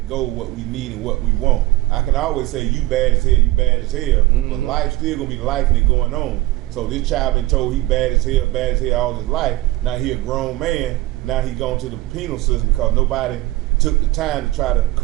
goal, what we need and what we want. I can always say you bad as hell, but life's still gonna be life and it going on. So this child been told he bad as hell all his life. Now he a grown man. Now he going to the penal system because nobody took the time to try to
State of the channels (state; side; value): quieter; left; 18.1 dB